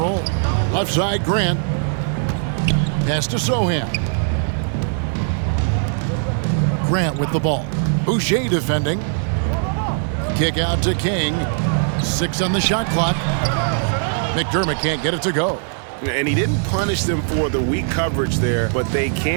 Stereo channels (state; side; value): silent; left; 66 dB below the other